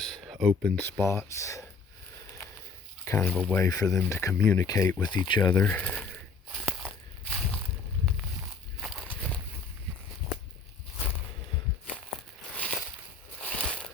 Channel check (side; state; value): right; quieter; 4.4 dB